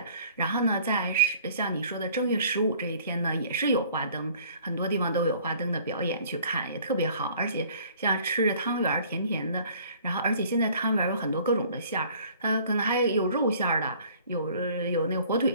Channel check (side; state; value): both; inverted; correlation -0.54